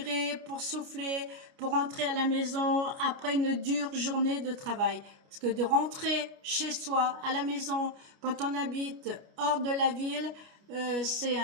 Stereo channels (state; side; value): late; left; 29 ms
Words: pour souffler, pour rentrer à la maison après une dure journée de travail. Parce que de rentrer chez soi, à la maison, quand on habite hors de la ville, c'est